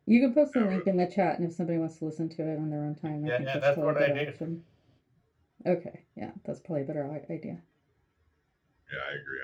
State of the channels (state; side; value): identical; both; correlation 1.00